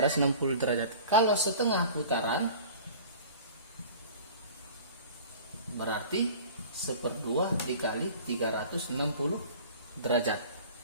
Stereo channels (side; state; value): both; inverted; correlation -0.42